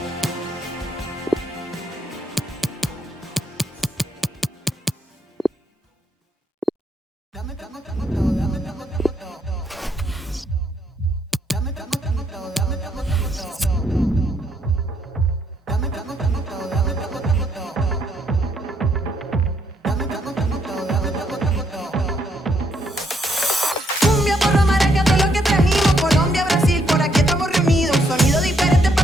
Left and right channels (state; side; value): normal; both; correlation 0.73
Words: Cumbia, porro, maraca, todo lo que trajimos. Colombia, Brasil, por aquí estamos reunidos. Sonido diferente pa'